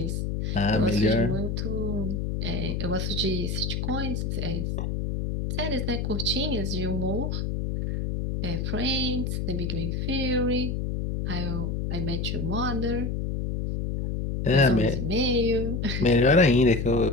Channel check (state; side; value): noise; left; hum, 2 dB below the sound